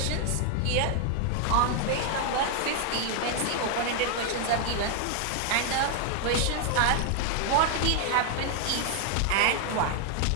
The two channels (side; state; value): both; different; correlation 0.00